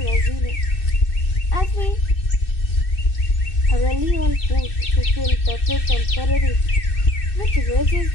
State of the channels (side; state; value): right; late; 2.6 ms